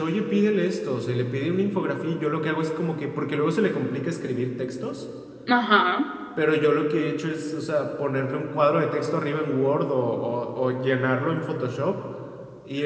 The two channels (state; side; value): identical; both; correlation 1.00